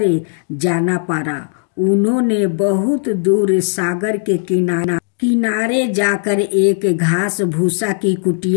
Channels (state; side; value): silent; right; digital silence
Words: जाना पड़ा। उन्होंने बहुत दूर सागर के किनारे जाकर एक घास भूसा की